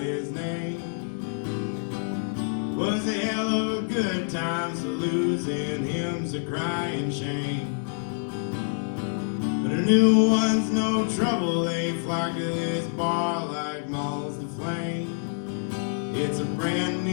name. Was a hell of a good time, so losing him's a crying shame. But a new one's no trouble, they flock to this bar like moths to flame. It's a brand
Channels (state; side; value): silent; right; digital silence